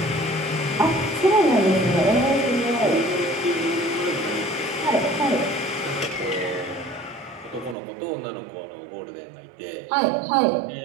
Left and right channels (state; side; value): drops out; left; at 7.8 s